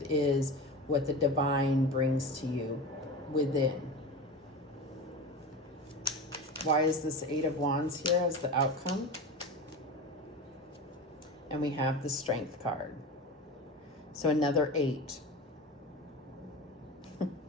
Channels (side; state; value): both; normal; correlation 0.28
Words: is what the divine brings to you within. Why is this Eight of Wands here as the outcome? And we have the Strength card. So another 8.